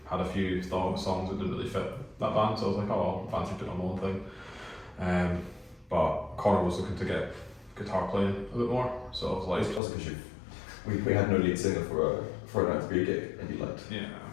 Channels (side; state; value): right; drops out; at 9.8 s